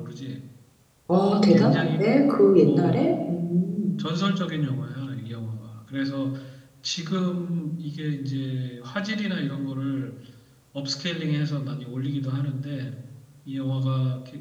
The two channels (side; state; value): both; identical; correlation 1.00